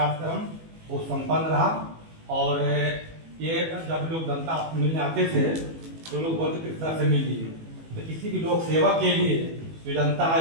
बहुत संपन्न रहा। और ये जब लोग जनता मिलने आते थे तो लोग बोलते किस तरह से मिलिए, तो किसी भी लोग सेवा के लिए जो जनता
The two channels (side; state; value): left; late; 18 ms